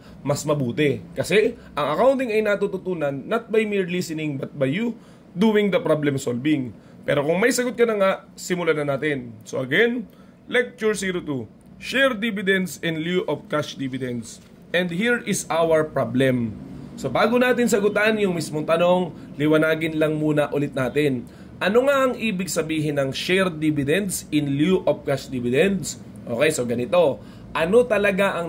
mas mabuti. Kasi ang accounting ay natututunan not by mere listening but by you doing the problem solving. Pero kung may sagot ka na nga, simulan na natin. So again, Lecture 02, Share Dividends in lieu of Cash Dividends. And here is our problem. So bago natin sagutan yung mismong tanong, liwanagin lang muna ulit natin. Ano nga ang ibig sabihin ng Share Dividends in lieu of Cash Dividends? Okay, so ganito. Ano talaga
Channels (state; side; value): identical; both; correlation 1.00